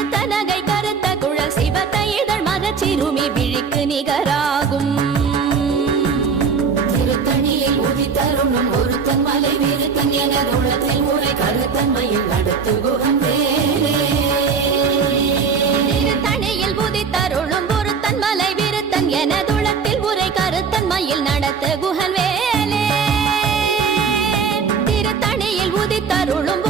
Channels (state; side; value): quieter; left; 5.7 dB